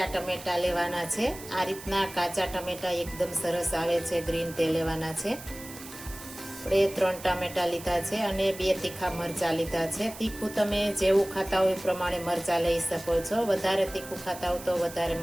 ટમેટા લેવાના છે. આ રીતના કાચા ટમેટા એકદમ સરસ આવે છે, ગ્રીન તે લેવાના છે. આપણે 3 ટામેટા લીધા છે અને 2 તીખા મરચાં લીધા છે. તીખું તમે જેવું ખાતા હોય એ પ્રમાણે મરચાં લઈ શકો છો. વધારે તીખું ખાતા હો તો વધારે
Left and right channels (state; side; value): noise; right; hiss, 15 dB below the sound